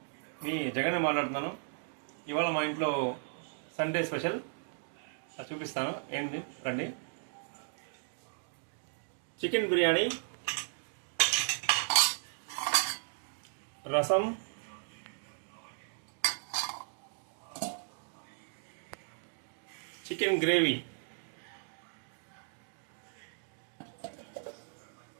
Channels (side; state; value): left; silent; digital silence